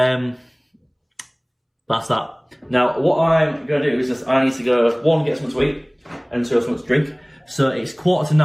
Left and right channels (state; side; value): identical; both; correlation 1.00